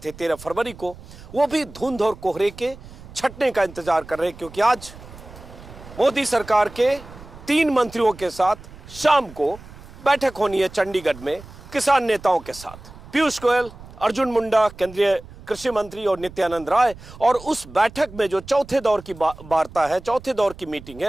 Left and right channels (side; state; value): right; noise; rumble, 18 dB below the sound